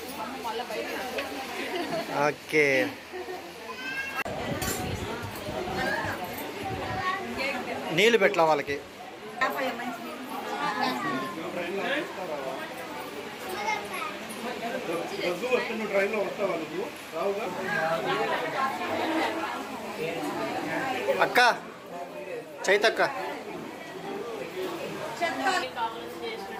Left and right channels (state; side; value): identical; both; correlation 1.00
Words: ఓకే. నీళ్ళు పెట్టలా వాళ్ళకి. అక్క చైతక్క,